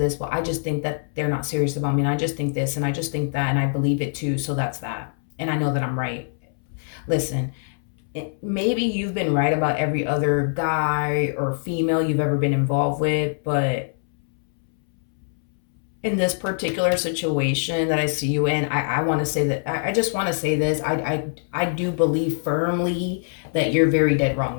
Well, I just think that they're not serious about me, and I just think this, and I just think that, and I believe it too, so that's that, and I know that I'm right. Listen, maybe you've been right about every other guy or female you've ever been involved with, but in this particular situation that I see you in, I want to say that I just want to say this. I do believe firmly that you're very dead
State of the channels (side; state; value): right; silent; 63 dB below the other